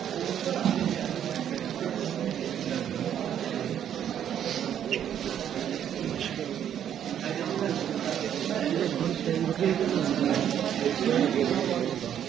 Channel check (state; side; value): quieter; left; 9.7 dB